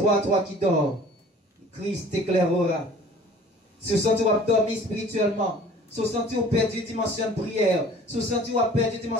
toi qui dors. Christ t'éclairera. Si vous sentez dormir spirituellement, si vous sentez perdu dimension de prière, si vous sentez perdu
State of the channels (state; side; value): normal; both; correlation 0.48